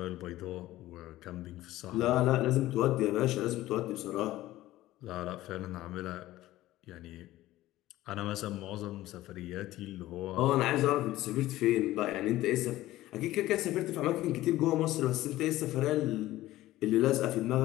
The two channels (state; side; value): quieter; right; 16.0 dB